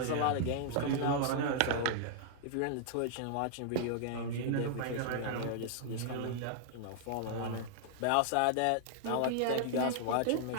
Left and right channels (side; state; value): both; different; correlation -0.01